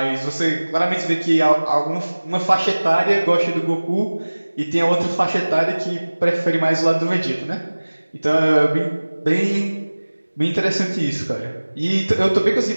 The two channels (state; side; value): inverted; both; correlation -1.00